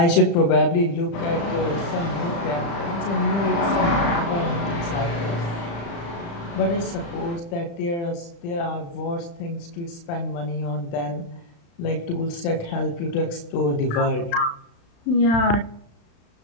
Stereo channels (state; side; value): late; right; 35 ms